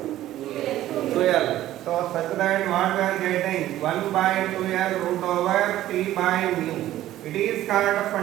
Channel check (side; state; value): left; quieter; 13.9 dB